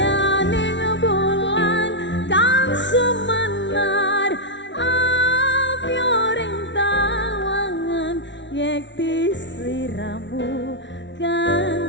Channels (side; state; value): right; late; 0.52 ms